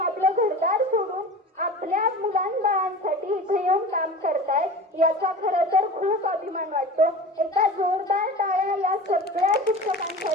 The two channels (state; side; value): normal; both; correlation 0.35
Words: घरदार सोडून आपल्या मुलांबाळांसाठी इथे येऊन काम करतायत, याचा खरं तर खूप अभिमान वाटतो। एका जोरदार टाळ्या या सगळ्या